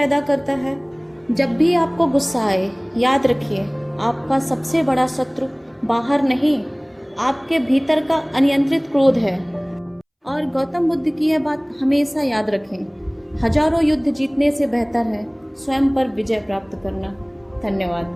करता है। जब भी आपको गुस्सा आए, याद रखिए, आपका सबसे बड़ा शत्रु बाहर नहीं, आपके भीतर का अनियंत्रित क्रोध है। और गौतम बुद्ध की यह बात हमेशा याद रखें, हजारों युद्ध जीतने से बेहतर है स्वयं पर विजय प्राप्त करना।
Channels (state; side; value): identical; both; correlation 1.00